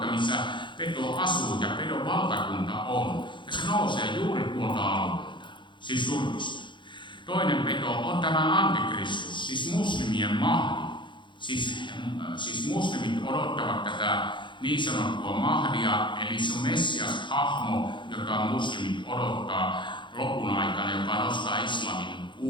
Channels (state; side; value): late; right; 0.23 ms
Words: missä peto asuu ja pedon valtakunta on. Ja se nousee juuri tuolta alueelta, siis Turkista. Toinen peto on tämä antikristus, siis muslimien mahdi. Siis muslimit odottavat tätä niin sanottua mahdia, eli se on Messias-hahmo, jota muslimit odottaa lopun aikana, joka nostaa islamin